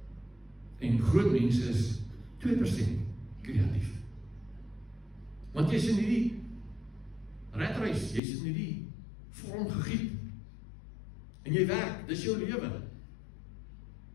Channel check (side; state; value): right; drops out; at 8.2 s